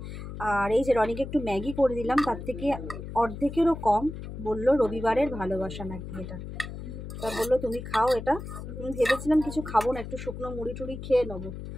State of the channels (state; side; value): noise; left; hum, 9 dB below the sound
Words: আর এই যে রনিকে একটু ম্যাগি করে দিলাম, তার থেকে অর্ধেকেরও কম। বললো রবিবারের ভালোবাসা নাকি এটা, তা বললো তুমি খাও এটা। আমি ভেবেছিলাম কিছু খাবো না, একটু শুকনো মুড়ি টুড়ি খেয়ে নেবো,